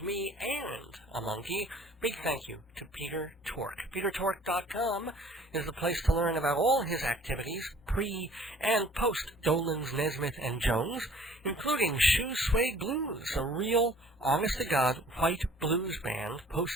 me and a monkey. Big thank you to Peter Tork. PeterTork.com is the place to learn about all his activities, pre- and post-Dolan's, Nesmith, and Jones, including Shoe Suede Blues, a real, honest-to-God white blues band,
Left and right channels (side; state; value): both; normal; correlation 0.53